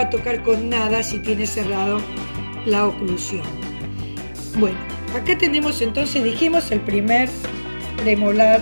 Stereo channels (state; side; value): inverted; both; correlation -1.00